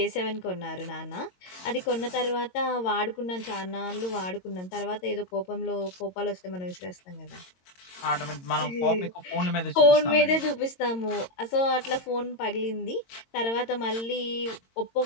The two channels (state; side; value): late; right; 22 ms